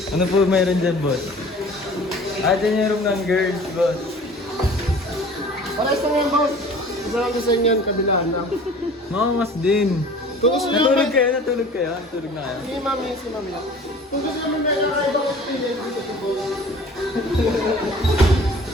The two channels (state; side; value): normal; both; correlation 0.46